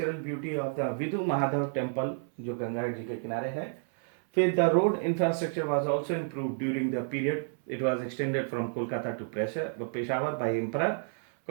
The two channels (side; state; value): left; silent; 58 dB below the other